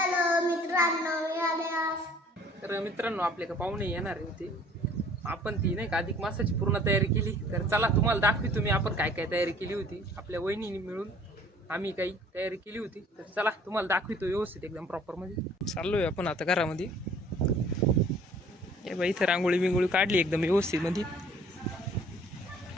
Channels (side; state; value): both; normal; correlation 0.54